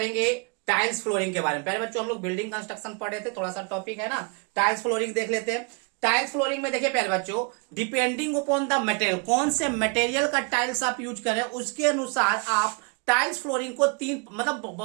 टाइल्स फ्लोरिंग के बारे में। पहले बच्चों हम लोग बिल्डिंग कंस्ट्रक्शन पढ़ रहे थे, थोड़ा सा टॉपिक है ना, टाइल्स फ्लोरिंग देख लेते हैं। टाइल्स फ्लोरिंग में देखिए पहले बच्चों, डिपेंडिंग अपॉन द मटेरियल, कौन से मटेरियल का टाइल्स आप यूज करें उसके अनुसार आप टाइल्स फ्लोरिंग को तीन मतलब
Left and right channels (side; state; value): left; quieter; 35.7 dB